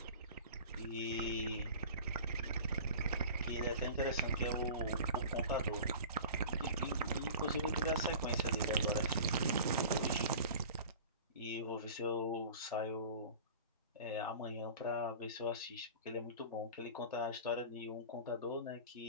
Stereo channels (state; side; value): inverted; both; correlation -0.39